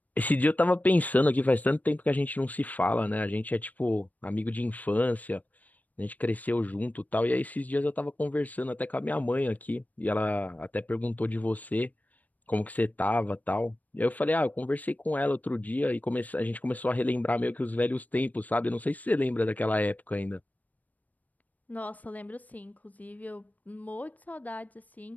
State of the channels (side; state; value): right; late; 0.077 ms